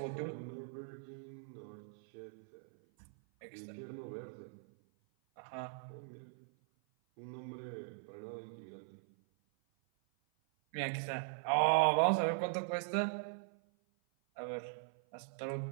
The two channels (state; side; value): silent; left; 51 dB below the other